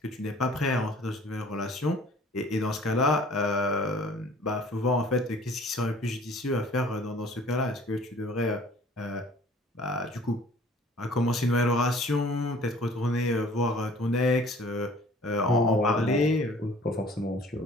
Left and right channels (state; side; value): normal; both; correlation 0.51